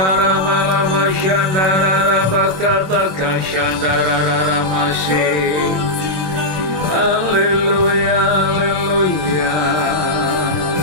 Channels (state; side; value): late; left; 27 ms